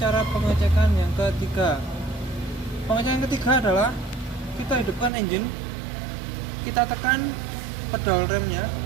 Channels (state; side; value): drops out; left; at 5.1 s